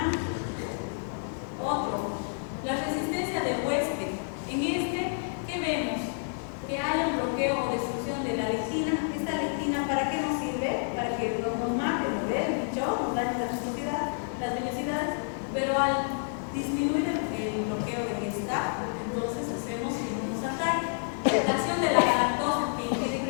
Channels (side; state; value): right; silent; digital silence